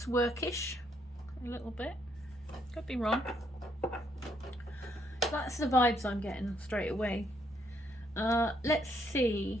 workish a little bit, could be wrong. That's the vibes I'm getting straight away. Let's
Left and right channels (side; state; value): both; normal; correlation 0.72